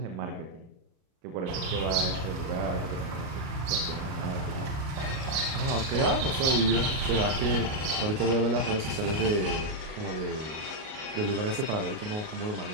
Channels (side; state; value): left; late; 38 ms